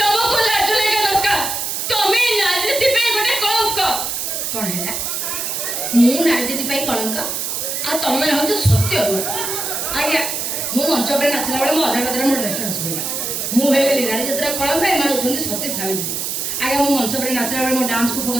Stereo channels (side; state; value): right; noise; hiss, 2 dB below the sound